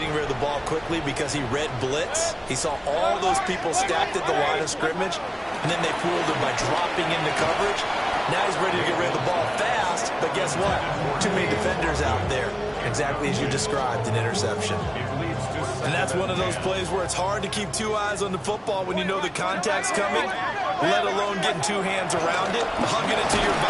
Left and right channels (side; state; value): both; identical; correlation 1.00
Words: rid of the ball quickly because he read blitz. He saw all those people stacked at the line of scrimmage, and then they fooled him by dropping into coverage. Now he's ready to get rid of the ball fast, but guess what? Too many defenders out there. Exactly as you described, an interception. And that's one of those plays where it's hard to keep 2 eyes on the football when you know the contact's coming, let alone getting 2 hands around it, hugging it to your